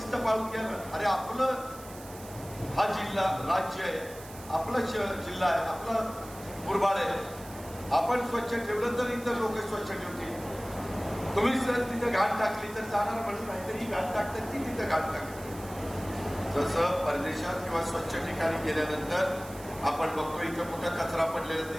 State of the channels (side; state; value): right; noise; hiss, 17 dB below the sound